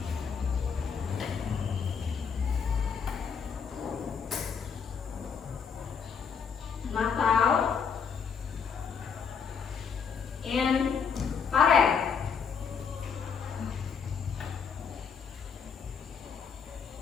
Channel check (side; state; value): right; quieter; 6.5 dB